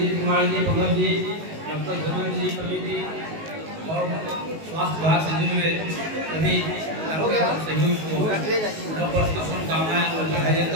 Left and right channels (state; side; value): late; left; 19 ms